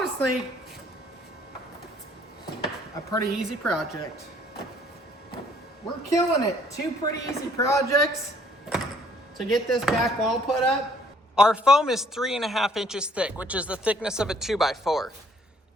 a pretty easy project. We're killing it. 2 pretty easy projects to get this back wall put up. Our foam is 3.5 inches thick, which is the thickness of a 2x4.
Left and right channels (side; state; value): both; normal; correlation 0.61